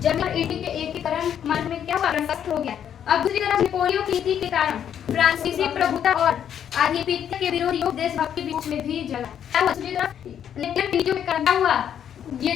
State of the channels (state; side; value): quieter; right; 9.2 dB